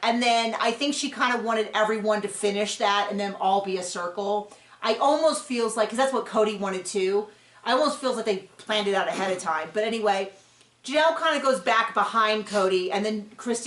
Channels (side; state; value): both; identical; correlation 1.00